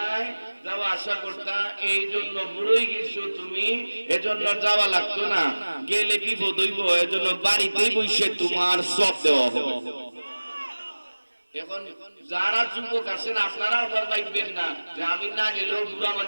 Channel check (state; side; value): inverted; both; correlation -1.00